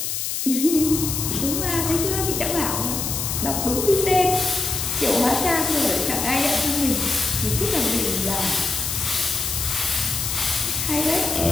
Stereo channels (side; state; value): left; noise; hiss, 2 dB below the sound